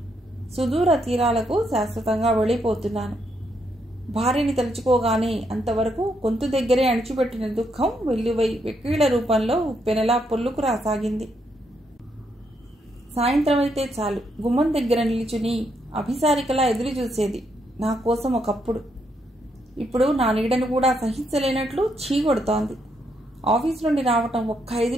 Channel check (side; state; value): both; normal; correlation 0.77